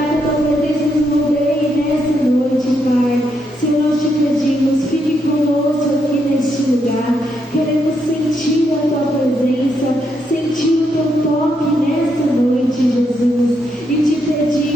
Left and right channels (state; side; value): normal; both; correlation 0.79